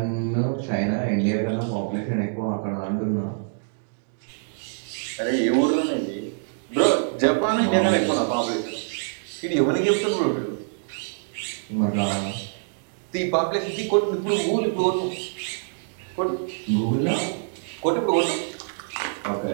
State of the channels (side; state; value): left; silent; digital silence